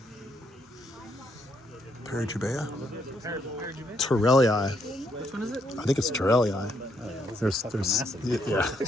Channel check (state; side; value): normal; both; correlation 0.74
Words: Perigubea? Torellii. Which one is it? I think it's Torellii. There's, yeah.